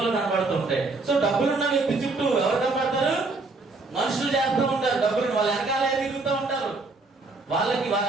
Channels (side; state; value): left; quieter; 3.6 dB